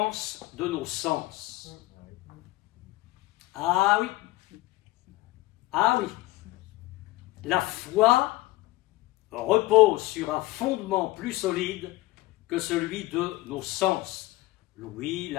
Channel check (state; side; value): quieter; right; 19.2 dB